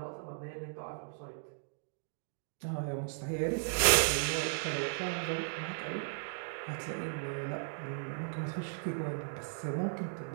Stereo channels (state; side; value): silent; left; digital silence